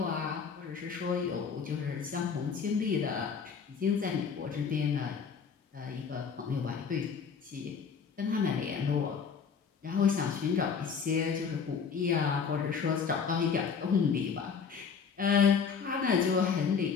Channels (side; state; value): right; quieter; 6.2 dB